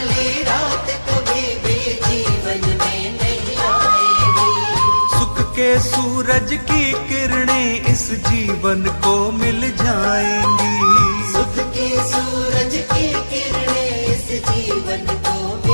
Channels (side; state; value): both; inverted; correlation -1.00